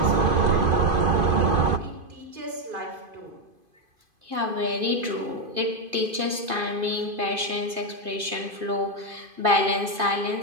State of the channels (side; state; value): left; late; 2.5 ms